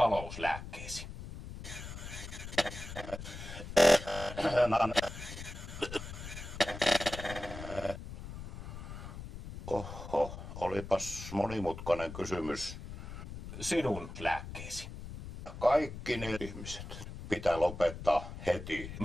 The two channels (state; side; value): noise; left; rumble, 10 dB below the sound